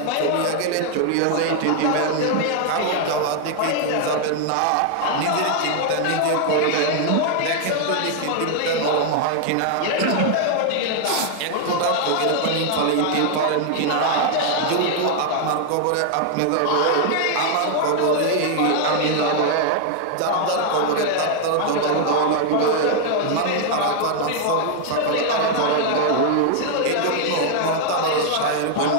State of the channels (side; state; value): both; different; correlation 0.00